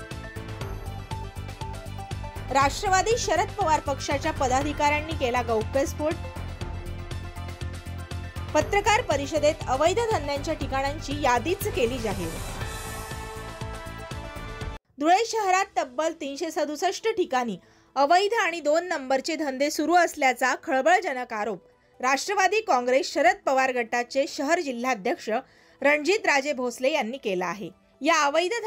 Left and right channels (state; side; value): identical; both; correlation 1.00